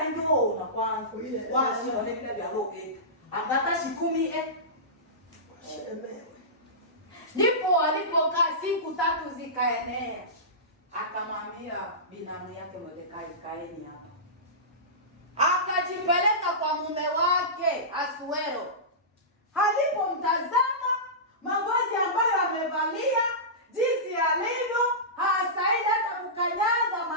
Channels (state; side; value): normal; both; correlation -0.19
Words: njoo na kwanza wasi wale vile vya roke angata shikumi shemewe. Ndipo alipokaa siku 3 zikaenea, akamwambia binamu yake Mordekai, kaeni hapa. Akajipeleka kwa mume wake Asuero. Alipomtazama mavazi ambayo amevalia, jinsi alivyo, hasaidi hata kukanyaga